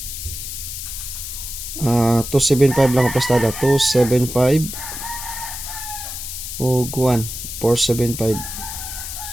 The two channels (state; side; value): noise; left; hiss, 7 dB below the sound